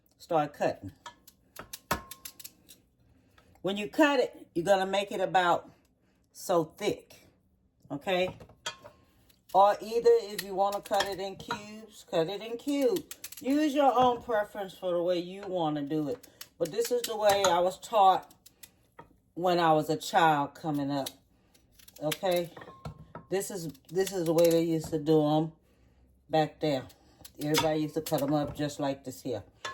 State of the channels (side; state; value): both; identical; correlation 1.00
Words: start cutting. When you cut it, you're going to make it about so thick. Okay? Or either if you want to cut it in cubes, cut it in cubes. Use your own preference for the way you want to do it. But this is the way I was taught when I was a child coming up. Okay? This is the way they used to do them back there. Everybody used to cut them up just like this here.